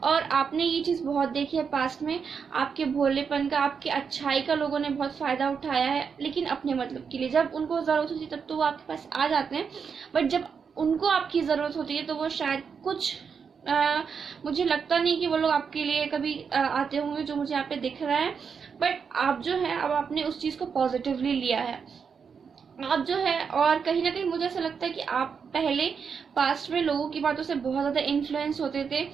और आपने ये चीज़ बहुत देखी है पास्ट में, आपके भोलेपन का, आपके अच्छाई का लोगों ने बहुत फ़ायदा उठाया है, लेकिन अपने मतलब के लिए। जब उनको ज़रूरत होती है तब तो वो आपके पास आ जाते हैं, बट जब उनको आपकी ज़रूरत होती है तो वो शायद कुछ मुझे लगता नहीं कि वो लोग आपके लिए कभी आते होंगे, जो मुझे यहाँ पे दिख रहा है। बट आप जो है अब आपने उस चीज़ को पॉजिटिवली लिया है, आप जो है, और कहीं ना कहीं मुझे ऐसा लगता है कि आप पहले पास्ट में लोगों की बातों से बहुत ज़्यादा इन्फ्लुएंस होते थे।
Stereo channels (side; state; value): left; quieter; 6.2 dB